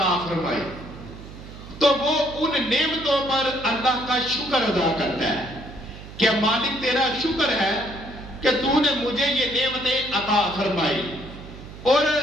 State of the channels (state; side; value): noise; right; hum, 15 dB below the sound